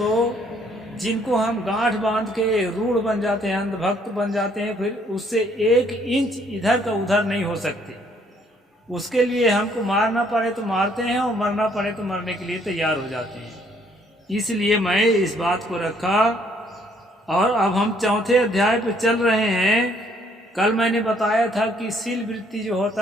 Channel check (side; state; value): both; normal; correlation 0.65